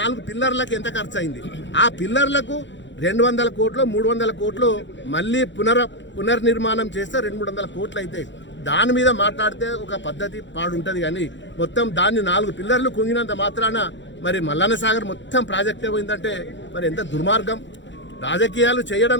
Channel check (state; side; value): late; right; 0.53 ms